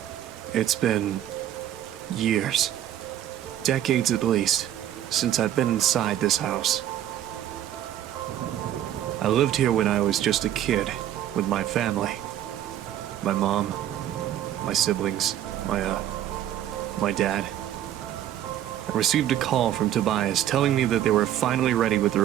It's been years, decades at least, since I've been inside this house. I lived here when I was just a kid with my family. My mom, my siblings, my dad. I received a call from Tobias telling me that they were finally ready with the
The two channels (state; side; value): quieter; left; 11.6 dB